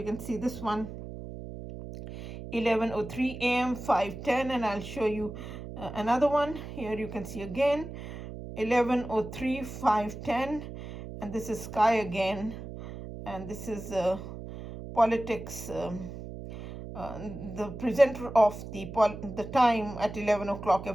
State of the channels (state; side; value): noise; right; hum, 10 dB below the sound